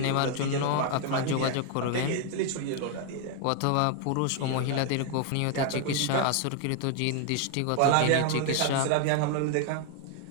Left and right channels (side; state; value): both; different; correlation 0.00